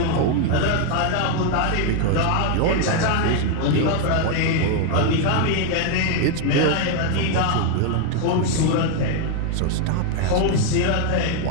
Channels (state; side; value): different; both; correlation 0.00